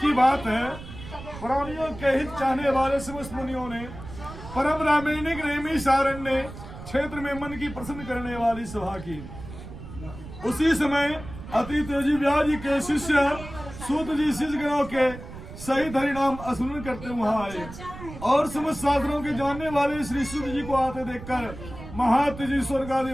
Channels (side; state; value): right; noise; rumble, 13 dB below the sound